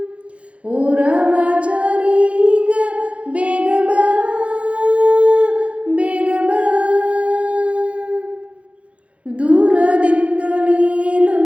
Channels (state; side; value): late; left; 0.062 ms